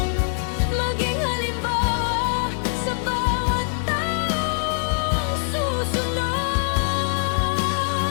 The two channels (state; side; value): silent; right; digital silence